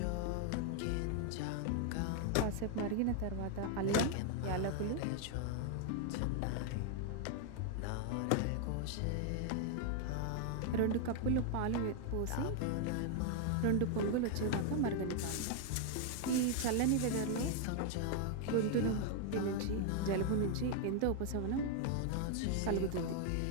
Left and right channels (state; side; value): different; both; correlation 0.00